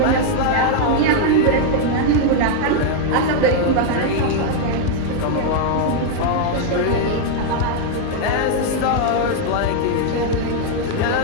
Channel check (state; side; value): different; both; correlation 0.00